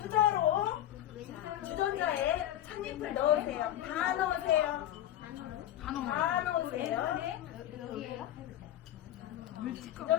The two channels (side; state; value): right; quieter; 12.4 dB